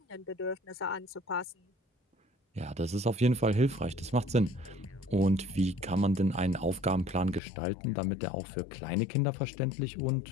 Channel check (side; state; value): right; drops out; at 7.4 s